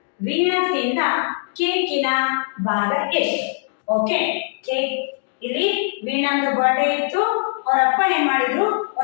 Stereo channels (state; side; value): silent; right; 65 dB below the other